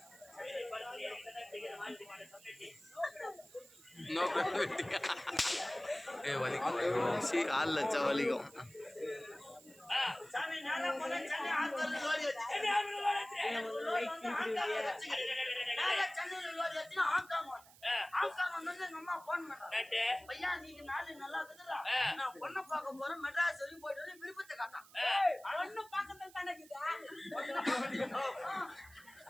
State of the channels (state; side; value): noise; right; hiss, 23 dB below the sound